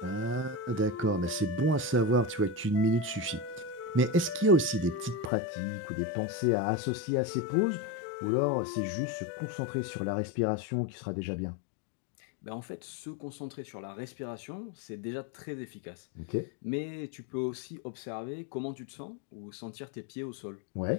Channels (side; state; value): right; drops out; at 5.3 s